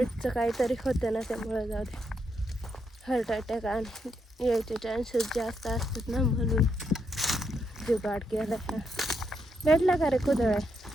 काहीतरी होतं ना, त्यामुळे जाऊ दे. हार्ट अटॅक आणि यायचे चान्सेस जास्त असतात ना, म्हणून जुगाड केला. भेटला का रे कुदळ?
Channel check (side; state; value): both; normal; correlation 0.79